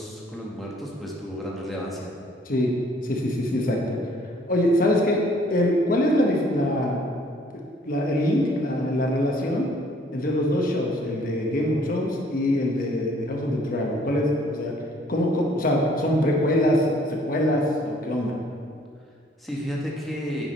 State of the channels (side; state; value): both; normal; correlation 0.60